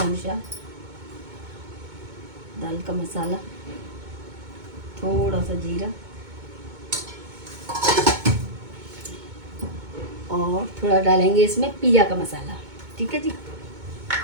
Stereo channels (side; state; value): left; late; 2.2 ms